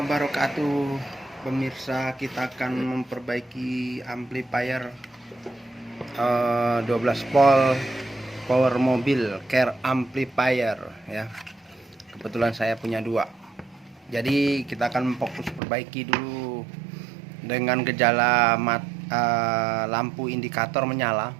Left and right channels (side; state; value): left; drops out; at 15.6 s